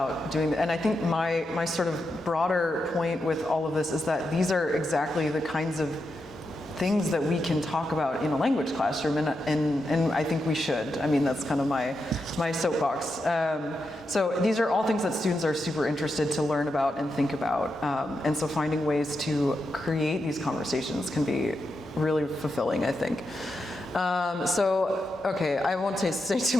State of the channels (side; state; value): both; normal; correlation 0.86